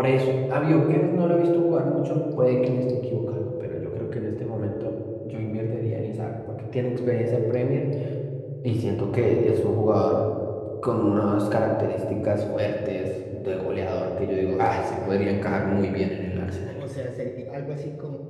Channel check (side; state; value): both; identical; correlation 1.00